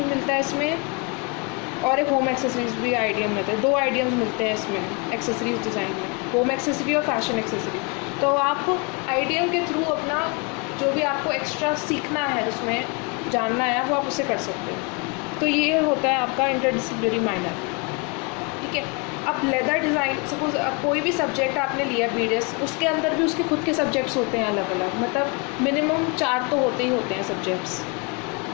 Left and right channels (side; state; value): right; quieter; 31.7 dB